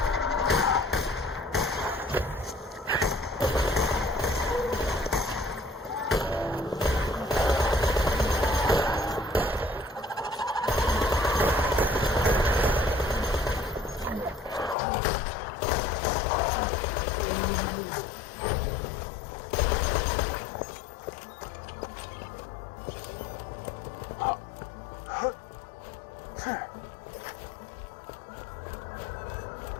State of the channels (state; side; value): drops out; right; at 14.8 s